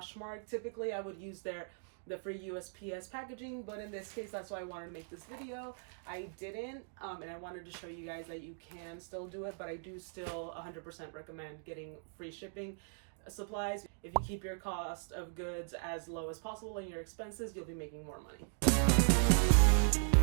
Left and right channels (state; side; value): silent; left; digital silence